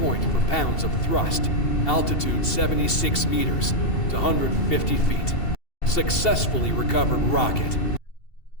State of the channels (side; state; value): right; late; 2.7 ms